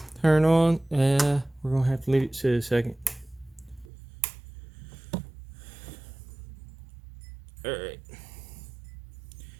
Turn on. We're going to have to leave it sit a second. Alright.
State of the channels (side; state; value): left; drops out; at 3.9 s